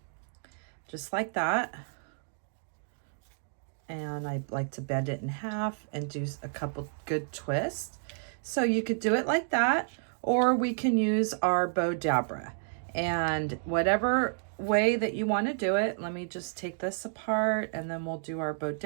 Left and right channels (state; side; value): silent; left; digital silence